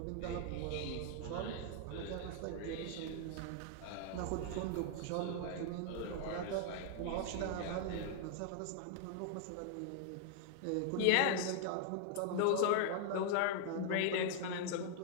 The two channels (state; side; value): different; both; correlation -0.01